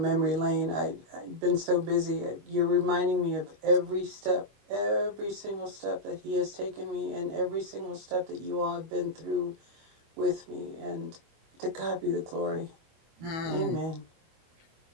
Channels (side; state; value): left; late; 25 ms